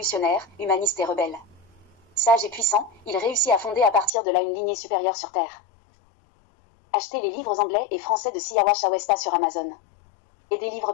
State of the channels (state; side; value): drops out; right; at 4.1 s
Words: humanistes et rebelles. Sage et puissant, il réussit à fonder à partir de là une lignée supérieure sur Terre. Achetez les livres anglais et français de Siavash Awesta sur Amazon. Et des livres